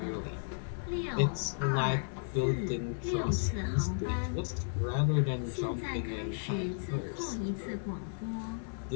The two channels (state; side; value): silent; right; 55 dB below the other